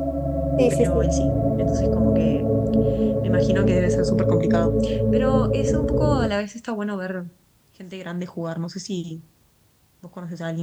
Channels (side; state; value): both; identical; correlation 1.00